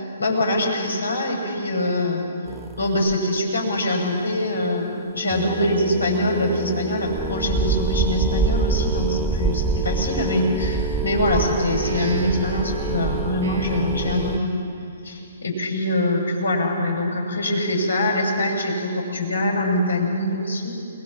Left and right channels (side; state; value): both; inverted; correlation -0.40